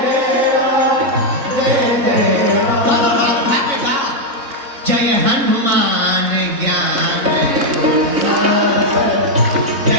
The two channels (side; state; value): left; late; 3.6 ms